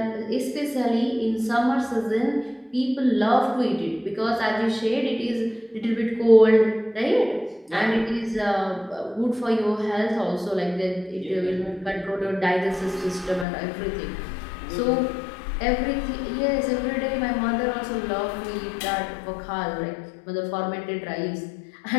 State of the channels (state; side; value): drops out; right; at 13.5 s